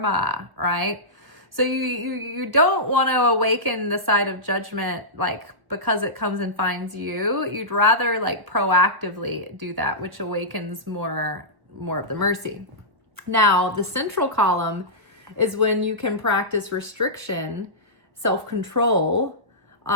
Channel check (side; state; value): left; late; 1.3 ms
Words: right? So you don't want to awaken the side of judgment, like, because it comes and finds you. You'd rather like proactively do that, which awakens more of the mercy. Now, the central column is when you can practice restriction, self-control,